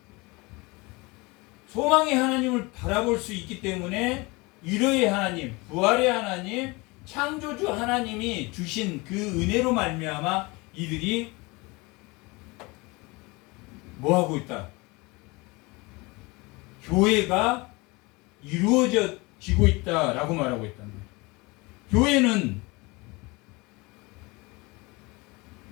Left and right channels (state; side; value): quieter; right; 25.1 dB